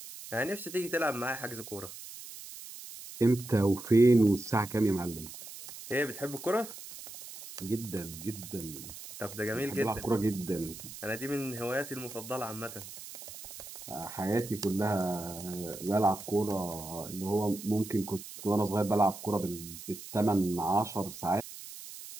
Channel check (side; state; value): right; noise; hiss, 13 dB below the sound